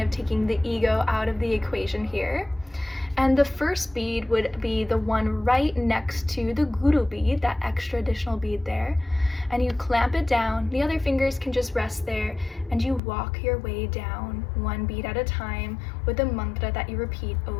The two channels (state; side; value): drops out; right; at 13.0 s